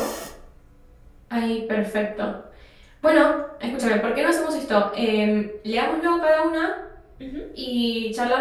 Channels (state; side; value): identical; both; correlation 1.00